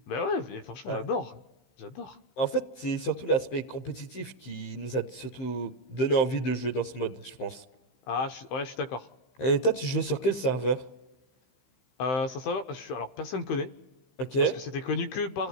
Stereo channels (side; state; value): right; late; 15 ms